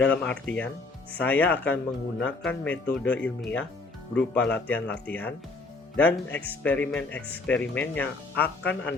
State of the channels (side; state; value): right; quieter; 3.6 dB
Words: artian, saya akan menggunakan metode ilmiah berupa latihan-latihan dan eksperimen-eksperimen yang akan